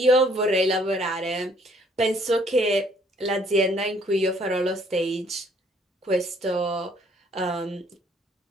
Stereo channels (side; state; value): both; normal; correlation 0.62